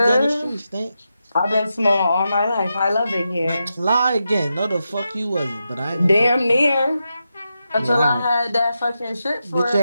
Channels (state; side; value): inverted; both; correlation -0.88